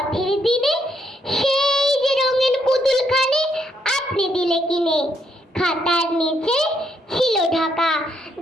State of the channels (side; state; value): both; normal; correlation 0.75